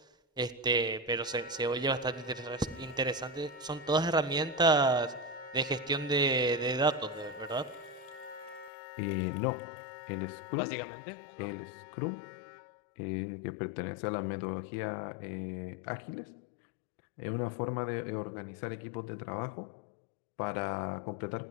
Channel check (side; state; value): right; drops out; at 8.7 s